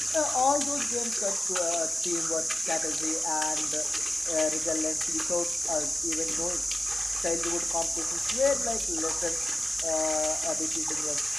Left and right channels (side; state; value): both; normal; correlation 0.93